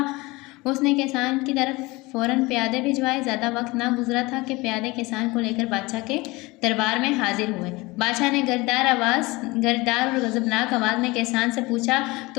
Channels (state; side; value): quieter; right; 22.8 dB